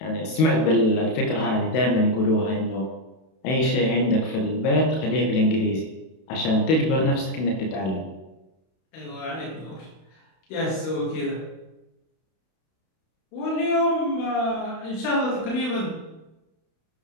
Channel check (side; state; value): right; late; 31 ms